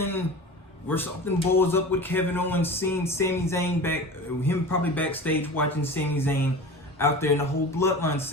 where something blows up with Kevin Owens seeing Sami Zayn him probably backstage watching Sami Zayn out there in the whole Bloodline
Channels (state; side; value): normal; both; correlation 0.34